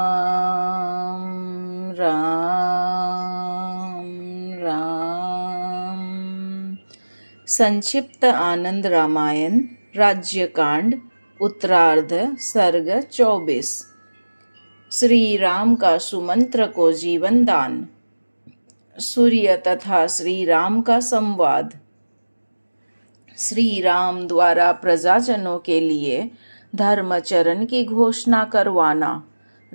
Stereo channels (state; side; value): inverted; both; correlation -1.00